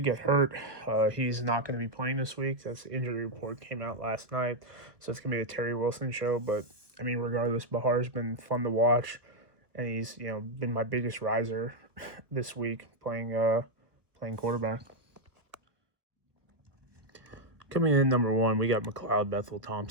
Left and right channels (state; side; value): late; left; 1.2 ms